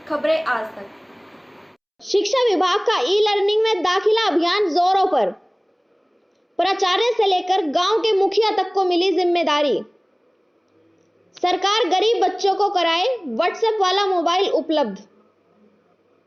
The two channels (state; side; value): identical; both; correlation 1.00